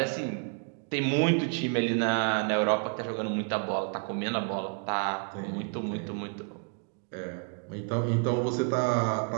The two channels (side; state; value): left; quieter; 38.0 dB